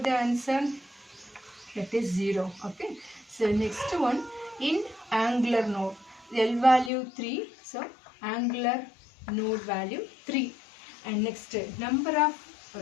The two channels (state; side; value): drops out; right; at 6.9 s